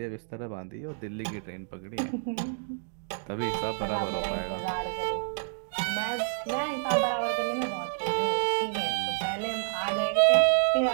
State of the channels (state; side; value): silent; left; digital silence